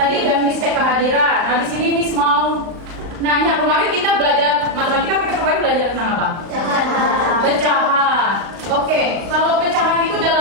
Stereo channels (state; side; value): late; left; 36 ms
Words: udah Miss cek kehadiran. Nah, di sini Miss mau nanya, kemarin kita belajar matematika, kita kemarin belajar tentang apa? Pecahan. Oke, kalau pecahan itu